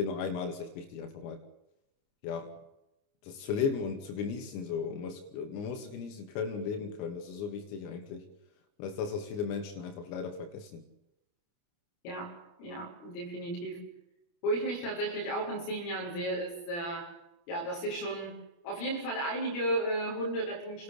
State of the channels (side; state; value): right; late; 29 ms